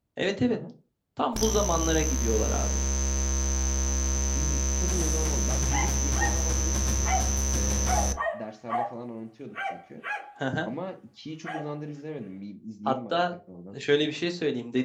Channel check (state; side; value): identical; both; correlation 1.00